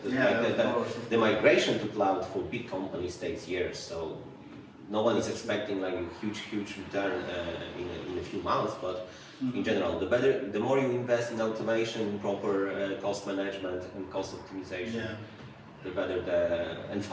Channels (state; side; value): identical; both; correlation 1.00